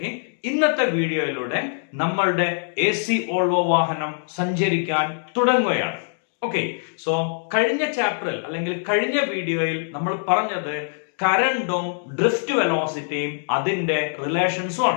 ഇന്നത്തെ വീഡിയോയിലൂടെ നമ്മളുടെ AC വോൾവോ വാഹനം സഞ്ചരിക്കാൻ തുടങ്ങുകയാണ്. ഓക്കെ, സോ കഴിഞ്ഞ ചാപ്റ്ററിൽ അല്ലെങ്കിൽ കഴിഞ്ഞ വീഡിയോയിൽ നമ്മൾ പറഞ്ഞത് കറന്റും ഡ്രിഫ്റ്റ് വെലോസിറ്റിയും അതിന്റെ റിലേഷൻസും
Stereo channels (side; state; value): right; silent; digital silence